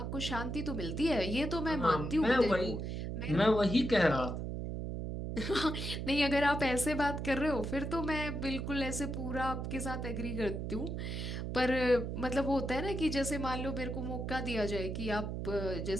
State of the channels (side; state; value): right; noise; hum, 4 dB below the sound